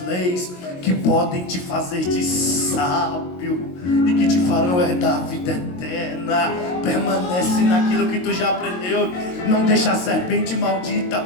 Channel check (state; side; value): late; right; 22 ms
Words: leis que podem te fazer de sábio e que te farão herdar a vida eterna. Permanece naquilo que tu já aprendeu. Não deixa a serpente maldita